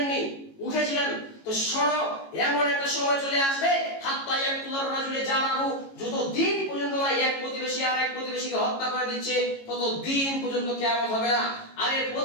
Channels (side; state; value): right; late; 18 ms